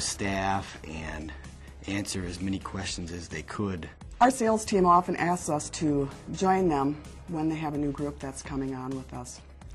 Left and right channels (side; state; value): both; identical; correlation 1.00